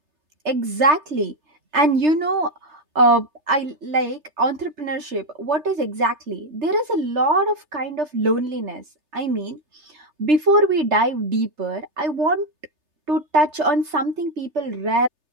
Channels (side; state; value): left; late; 3.3 ms